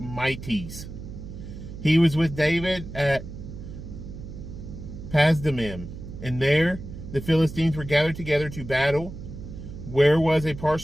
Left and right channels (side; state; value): right; noise; hum, 11 dB below the sound